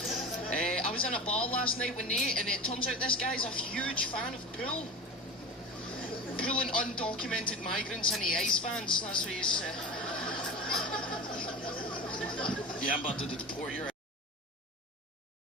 I was in a bar last night with Nate, and it turns out this guy's a huge fan of pool. Pulling undocumented migrants into ice vans. That's what he's. Yeah, I'm about to deport your.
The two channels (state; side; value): normal; both; correlation 0.30